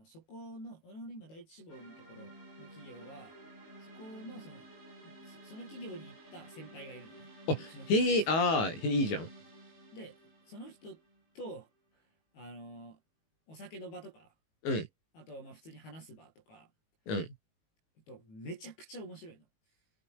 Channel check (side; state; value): right; late; 19 ms